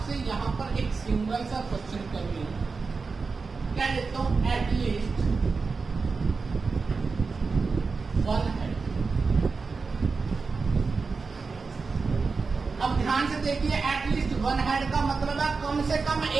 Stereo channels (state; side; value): quieter; left; 4.5 dB